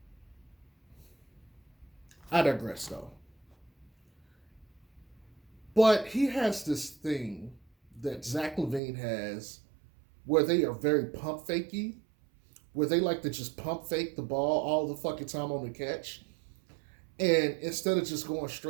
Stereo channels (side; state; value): left; drops out; at 8.8 s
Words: I digress though. But he has this thing that Zach LaVine has where they are very pump fakey, where they like to just pump fake the ball all the fucking time on the catch. And instead of just going